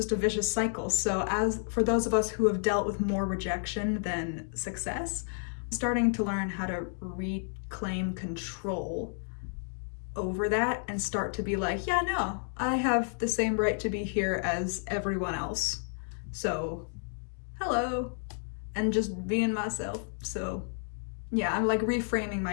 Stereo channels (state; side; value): silent; right; digital silence